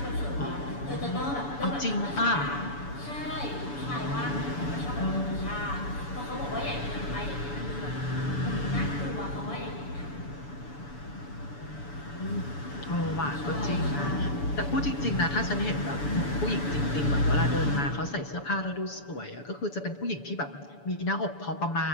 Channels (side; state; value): right; late; 7.0 ms